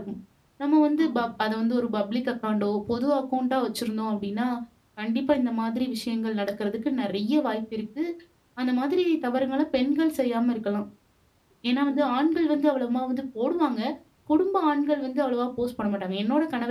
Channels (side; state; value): both; identical; correlation 1.00